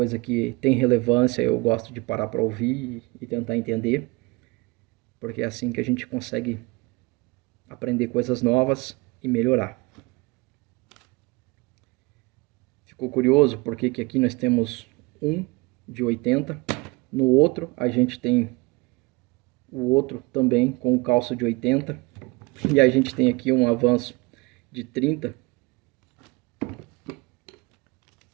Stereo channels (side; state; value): left; quieter; 25.5 dB